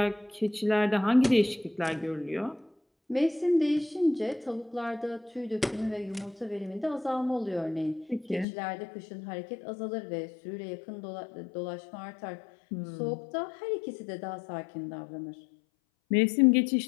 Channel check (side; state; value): right; drops out; at 8.5 s